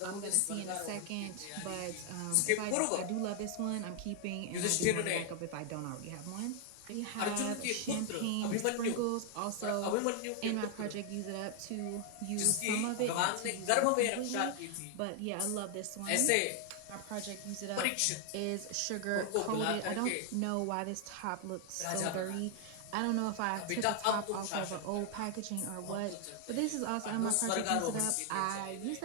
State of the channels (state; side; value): different; both; correlation 0.00